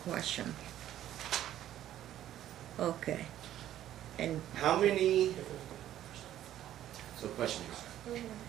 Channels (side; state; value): left; quieter; 12.1 dB